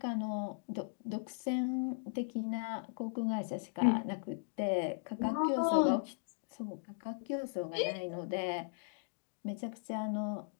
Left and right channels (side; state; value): right; silent; digital silence